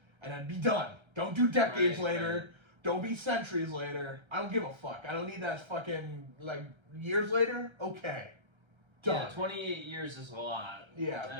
And then be done. Don't do decades later. Right. Don't be centuries later. I don't give a fuck. I don't need that fucking like years later. Okay. Done. Yeah, 28 years is a lot.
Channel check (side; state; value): left; late; 1.3 ms